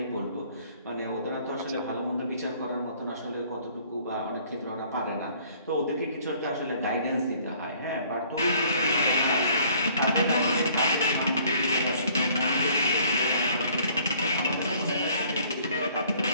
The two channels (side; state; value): both; inverted; correlation -0.58